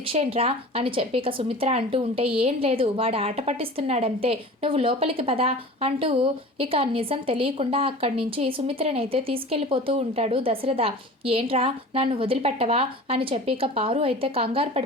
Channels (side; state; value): both; normal; correlation 0.38